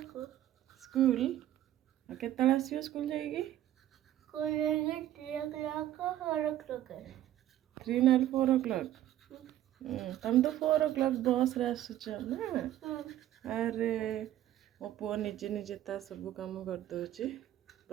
स्कूल केतला आसीओ स्कूल जाईकी? 3 or 4 o'clock। तुम तो 4 o'clock बस रे आसुच ना। अरे मो पुओ निजे निजे ता सब काम कर दोची।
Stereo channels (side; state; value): left; quieter; 12.9 dB